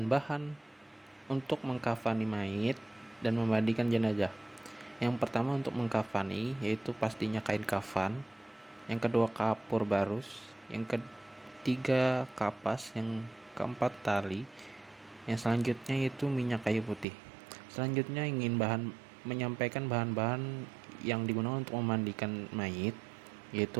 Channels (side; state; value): left; drops out; at 17.1 s